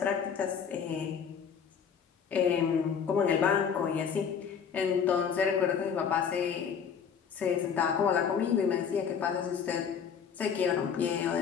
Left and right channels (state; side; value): quieter; right; 7.1 dB